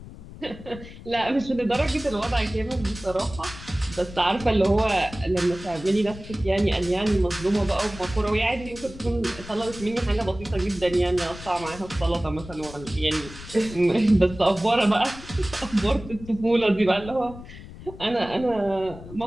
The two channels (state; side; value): noise; left; rumble, 15 dB below the sound